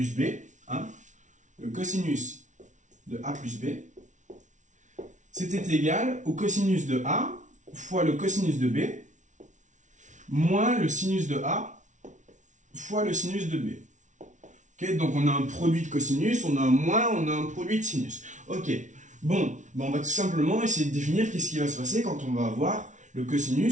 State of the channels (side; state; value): left; late; 0.36 ms